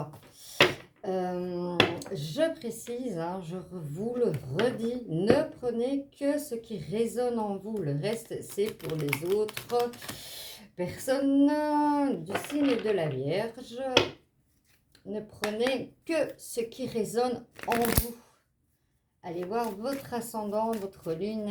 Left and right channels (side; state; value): both; identical; correlation 1.00